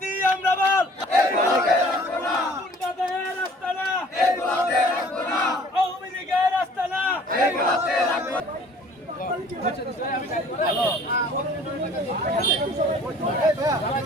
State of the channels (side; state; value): both; normal; correlation 0.52